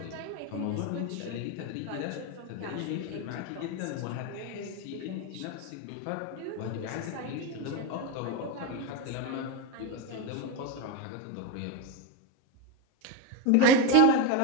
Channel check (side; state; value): both; different; correlation 0.04